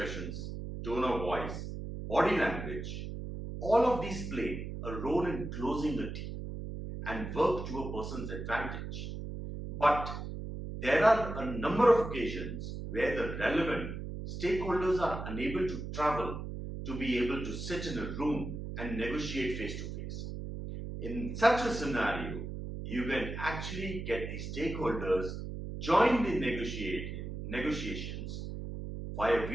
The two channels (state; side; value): noise; right; hum, 7 dB below the sound